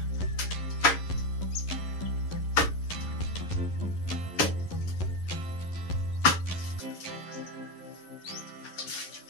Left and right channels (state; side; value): late; right; 11 ms